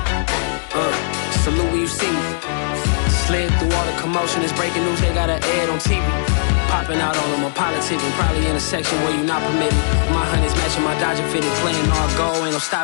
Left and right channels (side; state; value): right; silent; digital silence